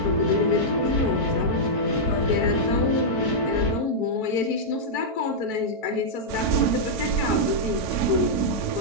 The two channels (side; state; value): right; late; 4.5 ms